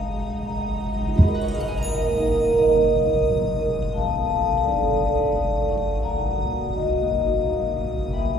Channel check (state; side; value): normal; both; correlation 0.69